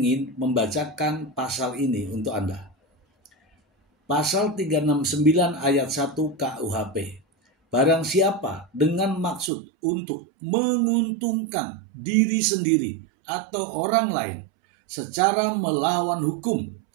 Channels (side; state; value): left; drops out; at 9.5 s